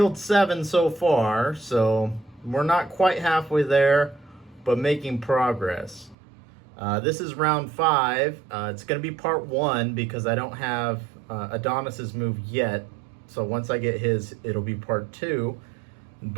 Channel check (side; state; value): left; drops out; at 6.2 s